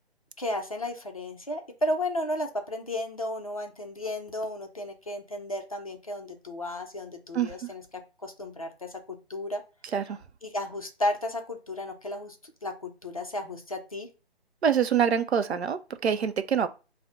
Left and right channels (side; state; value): left; quieter; 3.1 dB